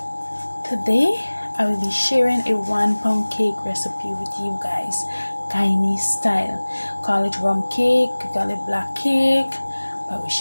today I will be sharing a 1 pound cake recipe with you guys, Guyanese style. Call it rum cake, call it black cake, but we're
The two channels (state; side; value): inverted; both; correlation -1.00